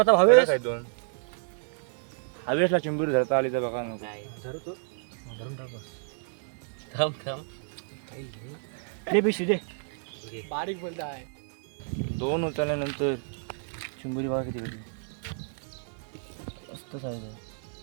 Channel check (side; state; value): left; silent; 58 dB below the other